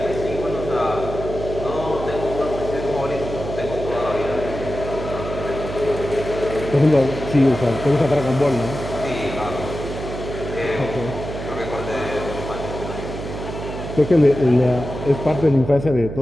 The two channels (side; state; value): right; noise; hum, 8 dB below the sound